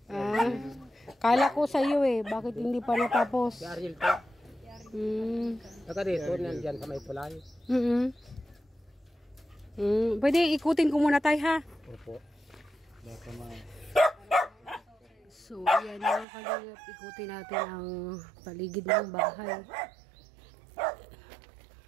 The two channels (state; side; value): drops out; left; at 16.2 s